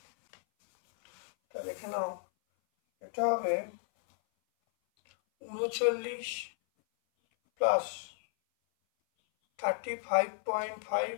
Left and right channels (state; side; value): silent; right; 56 dB below the other